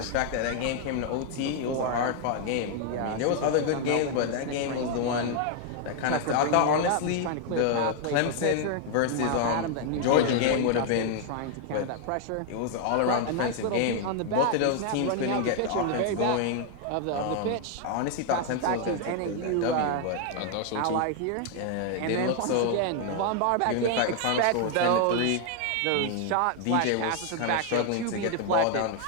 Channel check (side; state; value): both; different; correlation 0.00